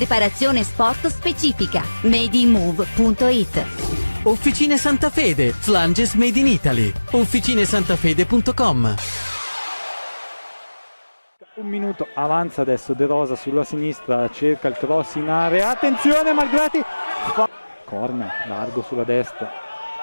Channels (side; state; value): both; inverted; correlation -1.00